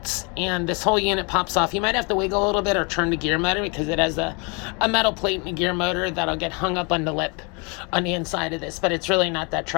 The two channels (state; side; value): quieter; right; 32.1 dB